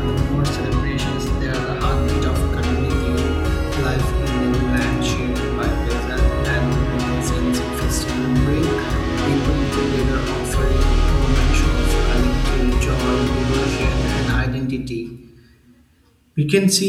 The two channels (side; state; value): both; identical; correlation 1.00